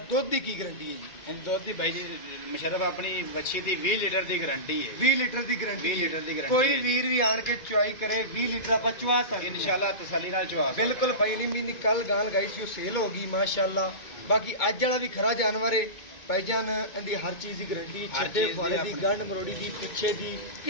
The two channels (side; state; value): right; late; 2.2 ms